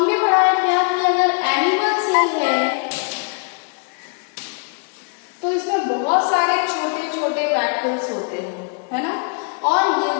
पढ़ा है क्या कि अगर एनिमल सेल है तो इसमें बहुत सारे छोटे छोटे वैक्यूल्स होते हैं, है ना। और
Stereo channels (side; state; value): right; quieter; 40.0 dB